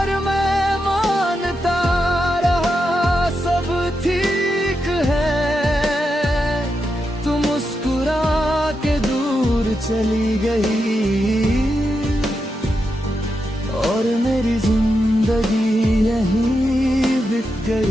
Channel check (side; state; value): both; normal; correlation 0.86